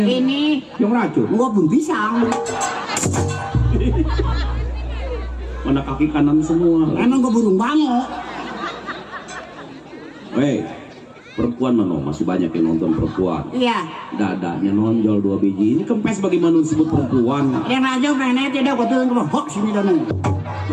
Ini Yang racun. gua pun pisang. Mana kaki kanan semua. Emang gua burung bango. Hei, perempuan mana? Masih banyak yang nonton perempuan. Iya. Dadanya nonjol 2 biji. Ini kempes bagaimana disebut perempuan? Yang raja pengen tidak gua turun ke bawah sini dan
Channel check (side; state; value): both; identical; correlation 1.00